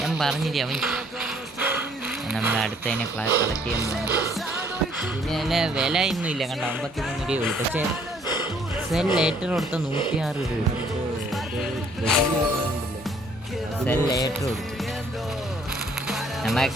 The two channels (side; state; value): both; normal; correlation 0.62